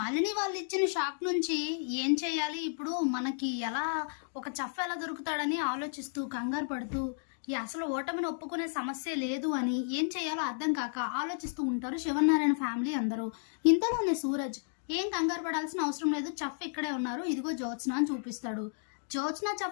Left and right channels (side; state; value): right; silent; digital silence